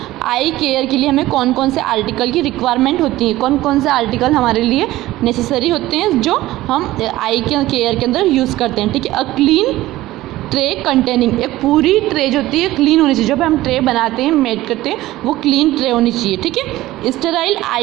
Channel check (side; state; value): left; quieter; 16.6 dB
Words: आई केयर के लिए हमें कौन कौन से आर्टिकल की रिक्वायरमेंट होती है, कौन कौन से आर्टिकल हमारे लिए नेसेसरी होते हैं जो हम आई के केयर के अंदर यूज़ करते हैं। ठीक है, अ क्लीन ट्रे कंटेनिंग, एक पूरी ट्रे जो होती है क्लीन होनी चाहिए, जब हम ट्रे बनाते हैं मेड करते हैं वो क्लीन ट्रे होनी चाहिए। ठीक है, स्टेराइल